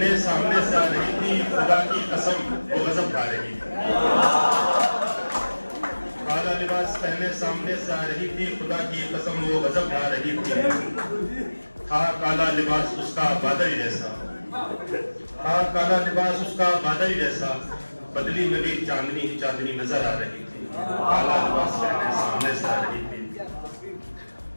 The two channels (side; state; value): both; inverted; correlation -1.00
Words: सामने से आ रही थी, खुदा की कसम वो गजब खा रही थी। काला लिबास पहने सामने से आ रही थी, खुदा की कसम वो गजब खा रही थी। था काला लिबास उसका बादल जैसा, था काला लिबास उसका बादल जैसा, बदली में भी चांदनी ही चांदनी नजर आ रही थी। काला लिबास पहने सामने से आ रही थी।